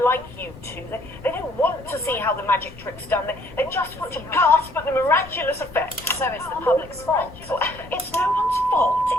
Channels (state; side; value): noise; left; rumble, 18 dB below the sound